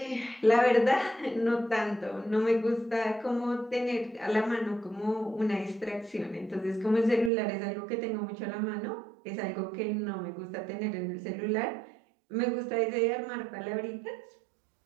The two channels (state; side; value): drops out; left; at 7.3 s